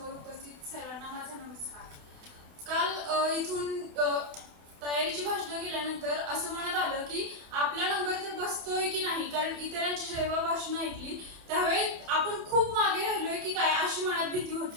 उपस्थित सर्वांना माझा नमस्कार. काल इथून तयारीची भाषणं केल्यानंतर असं म्हणत आलं की आपला नंबर तर बसतोय की नाही, कारण इतरांची जेव्हा भाषणं ऐकली त्यावेळी आपण खूप मागे राहिलोय की काय, अशी मनात भीती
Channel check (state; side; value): late; left; 27 ms